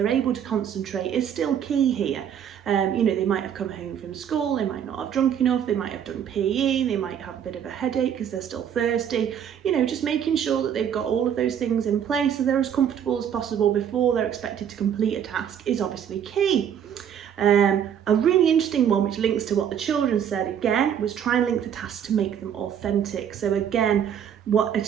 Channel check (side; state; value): left; quieter; 8.8 dB